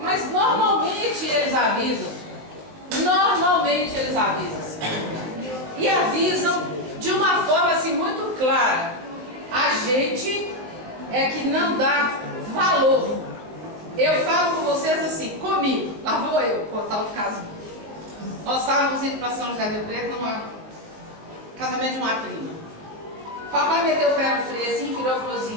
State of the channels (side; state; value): left; late; 19 ms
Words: normalmente eles avisam. Normalmente eles avisam. E avisam de uma forma assim muito clara. A gente é que não dá valor. Eu falo com vocês assim, comigo, lá vou eu contar o caso. Nós estávamos indo para São José do Rio Preto num casamento de uma prima. Papai meteu o pé no freio assim, virou e falou assim,